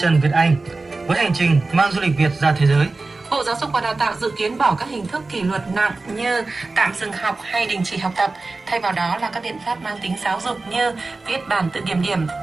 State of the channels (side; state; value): left; quieter; 3.5 dB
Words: Trần Việt Anh với hành trình mang du lịch Việt ra thế giới. Bộ Giáo dục và Đào tạo dự kiến bỏ các hình thức kỷ luật nặng như tạm dừng học hay đình chỉ học tập, thay vào đó là các biện pháp mang tính giáo dục như viết bản tự kiểm điểm,